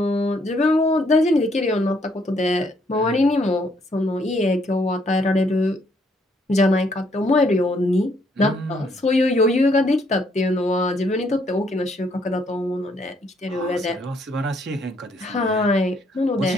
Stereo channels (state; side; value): normal; both; correlation 0.70